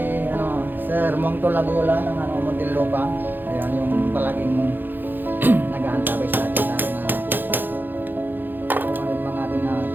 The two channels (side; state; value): left; late; 0.092 ms